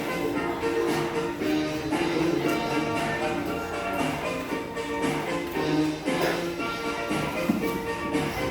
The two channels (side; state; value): both; identical; correlation 1.00